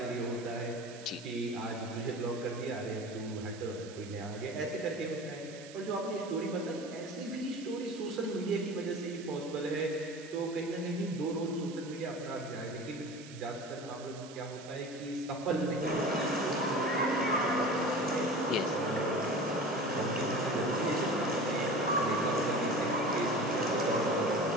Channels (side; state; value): right; noise; hiss, 17 dB below the sound